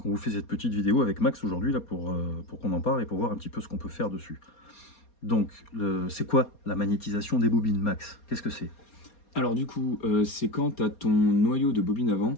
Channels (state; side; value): late; right; 4.2 ms